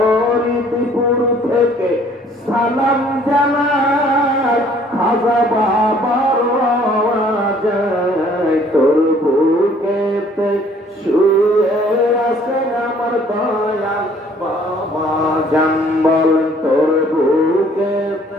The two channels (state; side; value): normal; both; correlation 0.58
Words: থেকে সালাম জানায় খাজা বাবার রওজায়। তোর বুকেতে শুয়ে আছে আমার দয়াল বাবা জান। বলেন তোর